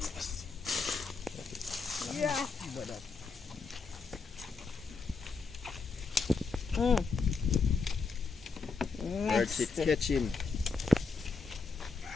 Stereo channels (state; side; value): quieter; right; 4.5 dB